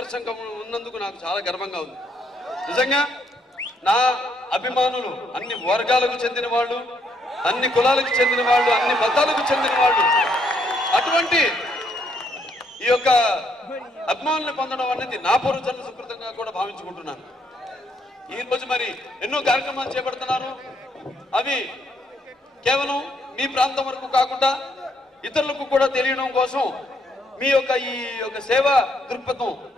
ఉన్నందుకు నాకు చాలా గర్వంగా ఉంది. నిజంగా నా అభిమానులు అన్ని వర్గాలకు చెందిన వాళ్ళు, అన్ని కులాలకు చెందిన వాళ్ళు, అన్ని మతాలకు చెందిన వాళ్ళు. అటువంటి ఈ యొక్క అభిమానులను పొందడం అనేది నా పూర్వజన్మ సుకృతంగా కూడా భావించుకుంటున్నాను. ఈ రోజు మరి ఎన్నో కార్యక్రమాలు చేపడుతున్నాను. అవి కేవలం మీ ప్రాంతం వరకు కాకుండా ఇతరులకు కూడా తెలియడం కోసం, మీ యొక్క ఈ యొక్క సేవా దృక్పథం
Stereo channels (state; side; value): normal; both; correlation 0.72